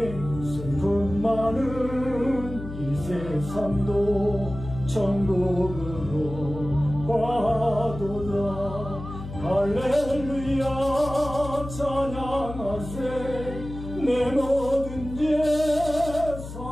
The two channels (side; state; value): left; noise; hum, 10 dB below the sound